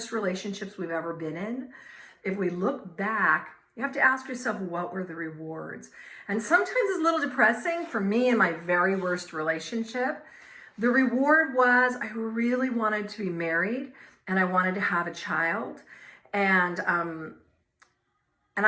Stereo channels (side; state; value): both; identical; correlation 1.00